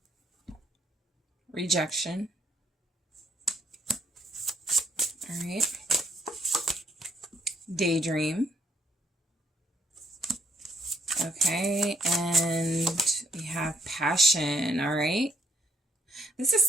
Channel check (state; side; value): normal; both; correlation 0.69